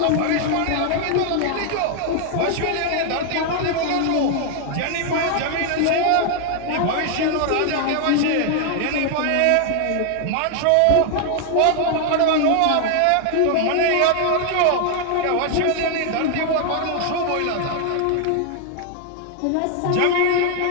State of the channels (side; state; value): both; different; correlation 0.00